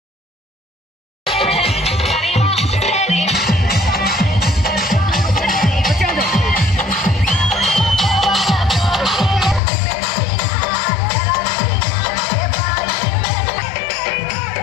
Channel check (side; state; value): right; drops out; at 9.6 s